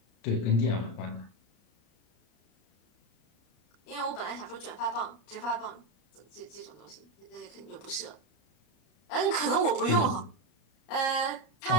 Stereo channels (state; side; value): late; right; 33 ms